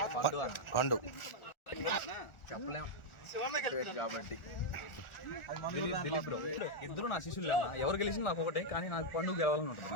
పండు కాబట్టి ఇద్దరు నా శిష్యులు అన్న. ఎవరు గెలిచిన నాకు ఒకటే, కానీ నాకు పండుగ గెలవాలని ఉంటుంది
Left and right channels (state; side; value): late; right; 1.4 ms